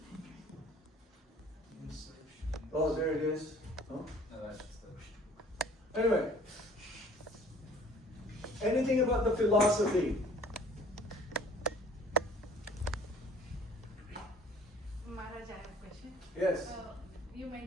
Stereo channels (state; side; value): normal; both; correlation 0.53